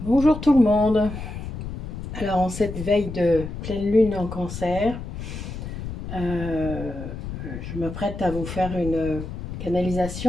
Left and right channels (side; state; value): left; noise; rumble, 8 dB below the sound